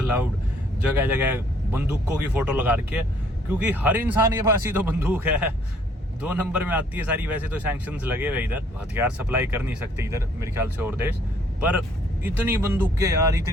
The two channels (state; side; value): normal; both; correlation 0.63